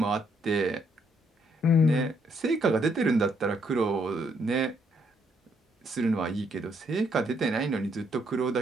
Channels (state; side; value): normal; both; correlation 0.72